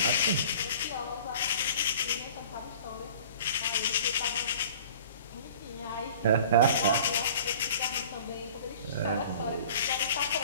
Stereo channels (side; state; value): both; inverted; correlation -0.46